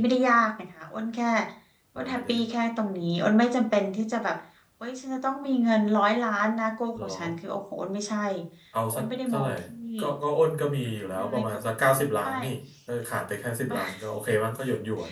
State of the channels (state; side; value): identical; both; correlation 1.00